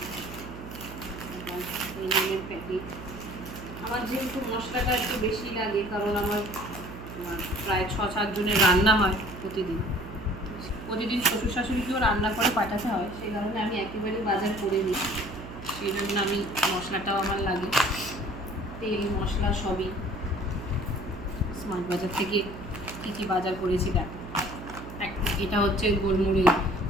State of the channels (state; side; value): noise; right; hum, 12 dB below the sound